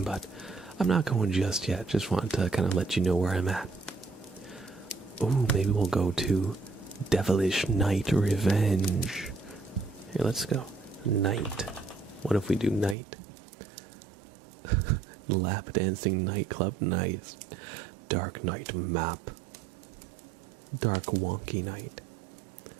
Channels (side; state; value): left; drops out; at 13.0 s